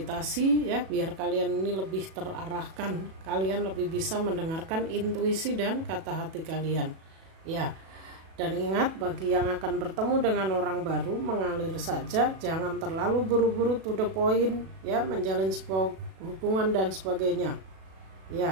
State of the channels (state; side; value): late; left; 37 ms